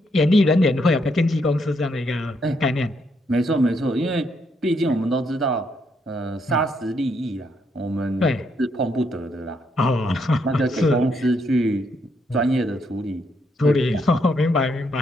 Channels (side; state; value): both; normal; correlation 0.75